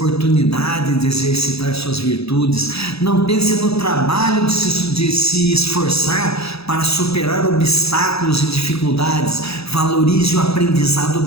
de exercitar suas virtudes. Não pense no trabalho de se esforçar para superar obstáculos e dificuldades. Valorize o aprendizado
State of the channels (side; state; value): right; late; 0.78 ms